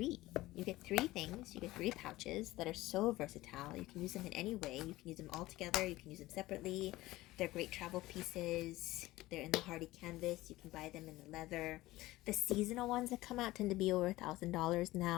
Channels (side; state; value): right; quieter; 17.9 dB